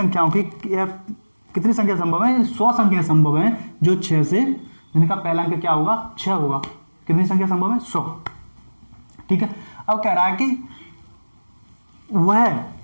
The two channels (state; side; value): inverted; both; correlation -1.00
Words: की कितनी संख्या संभव है? 100 संख्या संभव है जो 6 से, जिनका पहला अंक क्या होगा? 6 होगा। कितनी संख्या संभव है? 100। ठीक है। अब कह रहा है कि वह